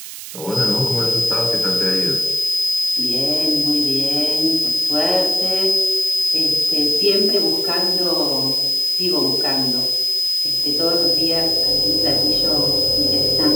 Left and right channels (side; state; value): right; noise; hiss, 12 dB below the sound